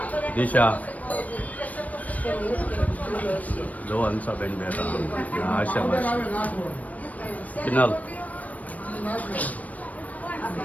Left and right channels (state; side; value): late; right; 0.071 ms